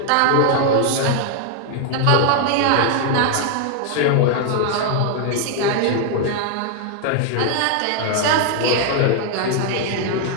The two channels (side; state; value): both; different; correlation 0.00